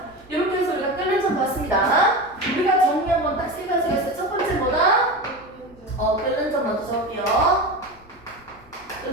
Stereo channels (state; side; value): noise; left; rumble, 28 dB below the sound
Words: 이렇게 해서 우리가 끓는 점 봤습니다. 우리가 정리 한번 딱 세 가지가 있어요. 첫 번째 뭐다? 끓는 점 먼저 적을게요.